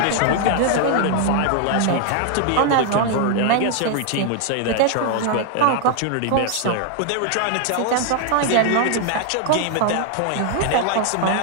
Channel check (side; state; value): both; different; correlation 0.00